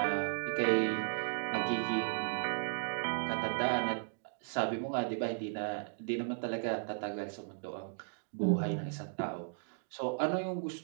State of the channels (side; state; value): left; silent; digital silence